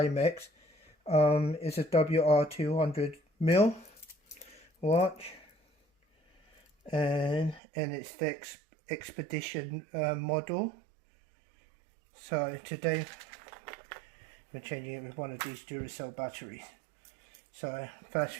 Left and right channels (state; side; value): drops out; left; at 7.6 s